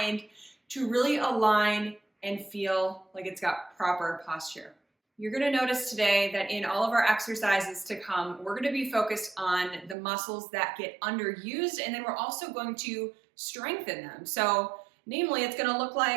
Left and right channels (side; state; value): left; drops out; at 10.0 s